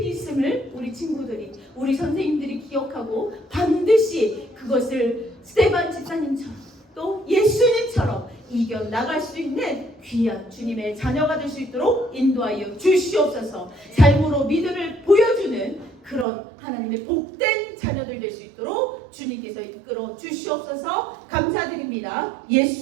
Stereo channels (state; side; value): drops out; left; at 16.2 s